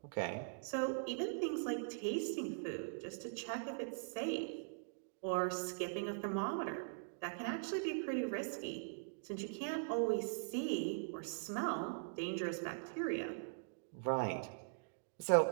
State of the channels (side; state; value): left; silent; digital silence